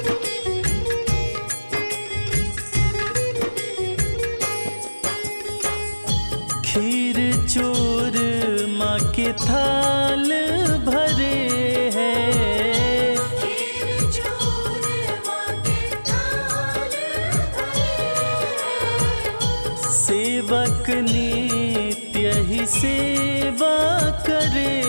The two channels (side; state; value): both; inverted; correlation -1.00